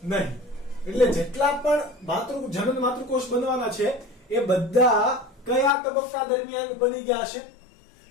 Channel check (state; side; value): drops out; right; at 5.7 s